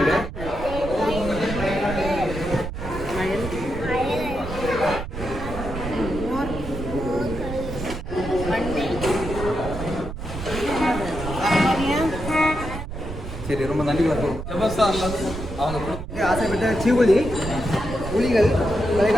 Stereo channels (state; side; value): noise; right; rumble, 8 dB below the sound